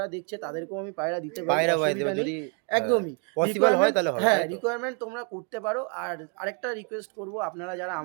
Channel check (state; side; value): quieter; left; 35.3 dB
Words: দেখছে তাদেরকেও আমি পায়রা দিতে পারি, পায়রা বাইতে অসুবিধা এবার নেই। যদি হ্যাঁ, একদমই পসিবল হয় রিকোয়ারমেন্ট, তাহলে হবে, হ্যাঁ তাই তো? রিকোয়ারমেন্ট তোমরা করতে পারো। আর আরেকটা রিকোয়েস্ট করব, আপনারা যারা